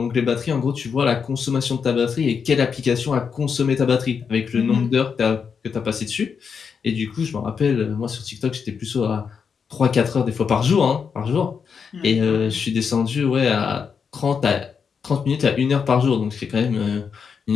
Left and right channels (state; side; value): quieter; right; 6.3 dB